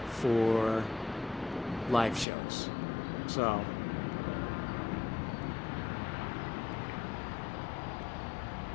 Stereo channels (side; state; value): right; drops out; at 2.2 s